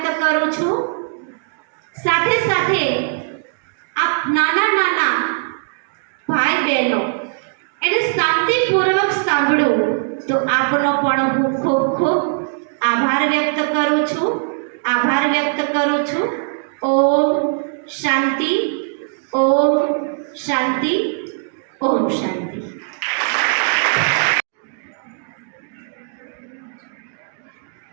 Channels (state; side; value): silent; left; digital silence